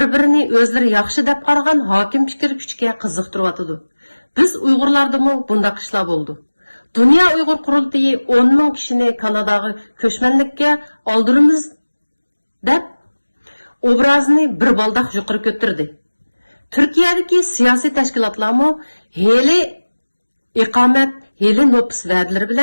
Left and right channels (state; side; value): inverted; both; correlation -1.00